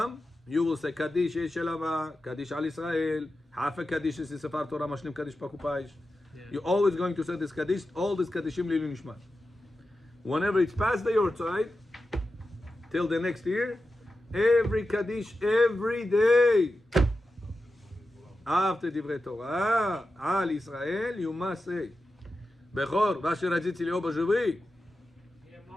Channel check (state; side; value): normal; both; correlation 0.91